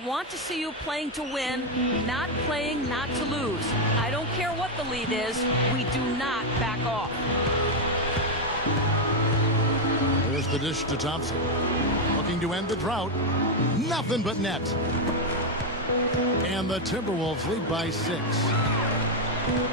want to see you playing to win, not playing not to lose. I don't care what the lead is. We do not back off. the dish to Thompson. Looking to end the drought. Nothing but net. And the Timberwolves lead by 6.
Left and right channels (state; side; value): normal; both; correlation 0.03